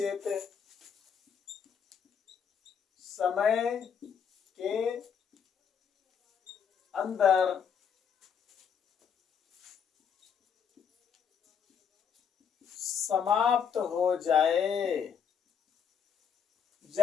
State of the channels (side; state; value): right; quieter; 7.3 dB